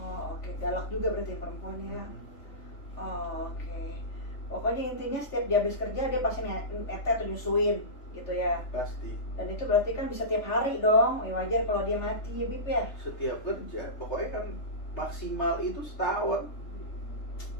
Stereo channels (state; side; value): late; right; 3.4 ms